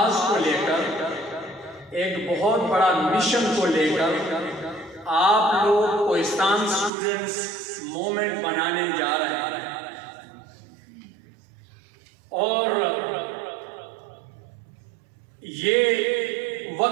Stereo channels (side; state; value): left; drops out; at 6.9 s